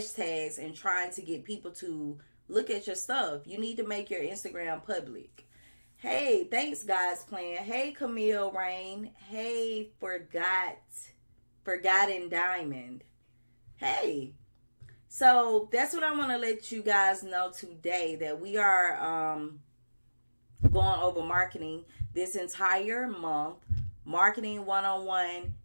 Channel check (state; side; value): inverted; both; correlation -1.00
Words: and trying to get people to look at your stuff. You need to make your Instagram public. Hey, thanks God's Plan. Hey, Camille Rain. Hey, Forgotten Diamond. Hey. So that's what I want to let you guys know today, that we are going over marketing this entire month. Marketing 101.